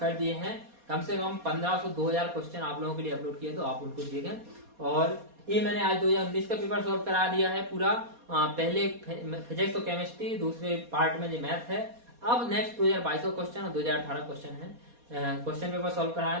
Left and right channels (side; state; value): left; late; 4.2 ms